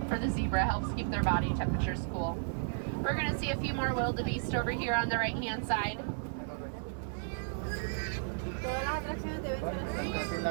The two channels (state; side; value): silent; left; digital silence